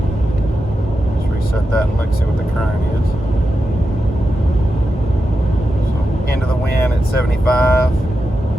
start that and look, see what the current is. So end of the wind at 75.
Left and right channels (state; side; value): normal; both; correlation 0.89